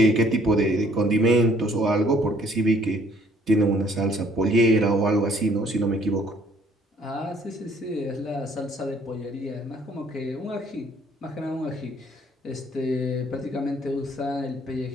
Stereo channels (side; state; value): both; normal; correlation 0.61